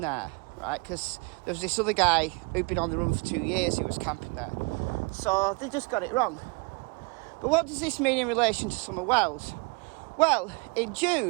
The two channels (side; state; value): left; quieter; 29.6 dB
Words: there, right, because there was this other guy who'd been on the run for 2 years who was camping there. So they just got it wrong. But what does this mean in relation to Summer Wells? Well, in